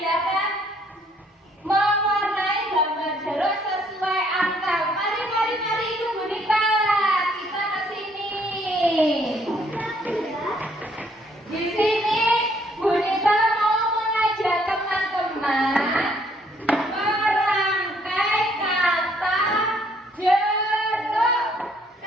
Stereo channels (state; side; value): normal; both; correlation 0.66